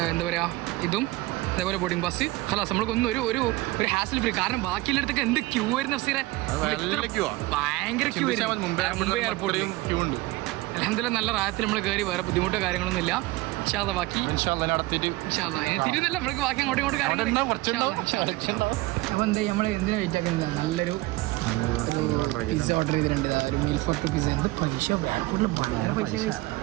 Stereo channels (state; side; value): quieter; left; 20.1 dB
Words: എന്താ പറയാ ഇതും അതേപോലെ ബോർഡിംഗ് പാസ് ഹലാസ്. നമ്മൾക്കൊന്നും ഒരു ഹാസിൽ ഫ്രീ. കാരണം ബാക്കിയുള്ളടത്തൊക്കെ എന്ത് ക്യൂ ആയിരുന്നു അഫ്സീറെ. ഭയങ്കര ക്യൂ ആയിരുന്നു മുംബൈ എയർപോർട്ടിൽ. ക്യൂ ഉണ്ട്. അൽഹംദുലില്ലാ നല്ല റായത്തിൽ നമ്മൾ കയറി. വേറെ ബുദ്ധിമുട്ടോ കാര്യങ്ങളൊന്നും ഇല്ല. ബാക്കി തിരുന്നല്ല നമ്മൾക്ക് ബാക്കി അങ്ങോട്ടും ഇങ്ങോട്ടും കാര്യങ്ങൾ. അപ്പോൾ എന്താ നമ്മൾ എന്തിനാ വെയിറ്റ് ആക്കുന്നത്? നല്ലൊരു പിസ്സ ഓർഡർ ചെയ്തിട്ടുണ്ട്. ഒരു മീൽ ഫോർ 2 പിസ്സ. എന്ത് പൈസ ബാങ്കൂട്ടിൽ വളരെ പൈസ.